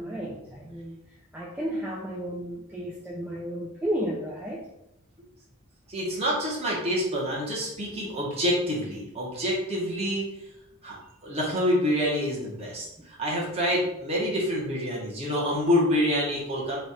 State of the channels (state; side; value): normal; both; correlation 0.31